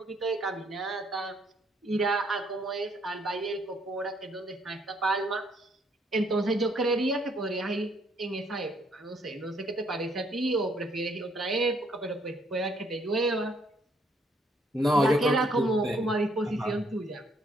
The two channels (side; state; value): both; normal; correlation 0.68